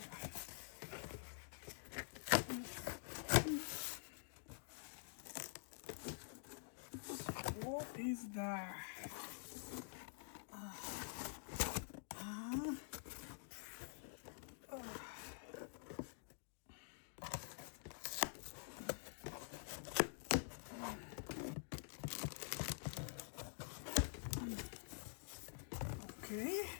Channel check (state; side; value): silent; right; digital silence